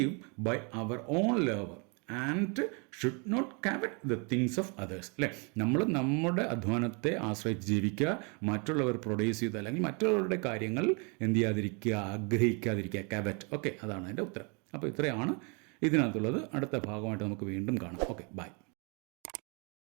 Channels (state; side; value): quieter; left; 33.3 dB